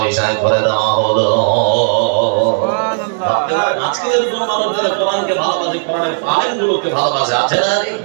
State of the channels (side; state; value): left; silent; digital silence